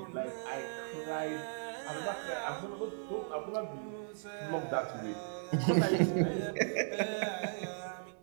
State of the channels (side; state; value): left; silent; digital silence